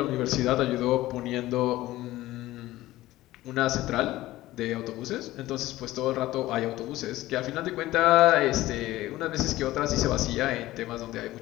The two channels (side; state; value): right; quieter; 16.6 dB